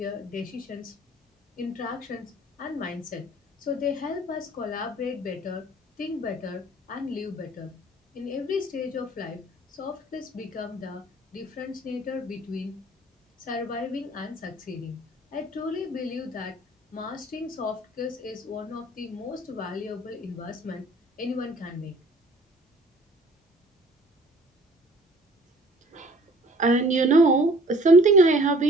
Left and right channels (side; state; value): both; normal; correlation 0.53